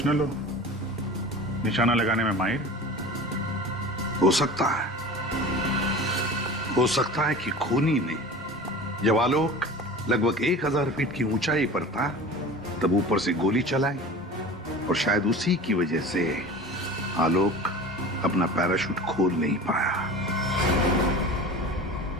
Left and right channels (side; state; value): both; normal; correlation 0.36